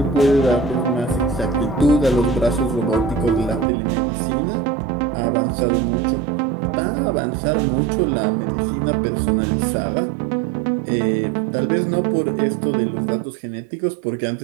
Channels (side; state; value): left; drops out; at 3.7 s